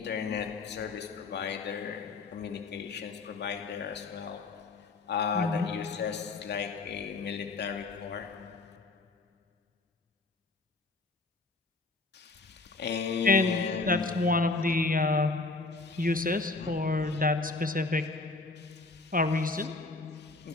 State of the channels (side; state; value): right; quieter; 3.5 dB